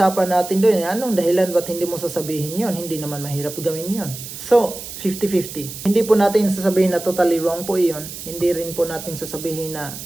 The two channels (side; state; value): right; noise; hiss, 11 dB below the sound